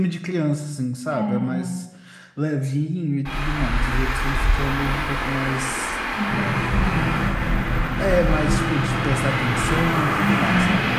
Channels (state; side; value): identical; both; correlation 1.00